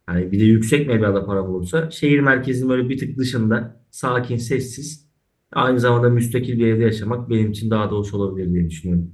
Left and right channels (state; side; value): identical; both; correlation 1.00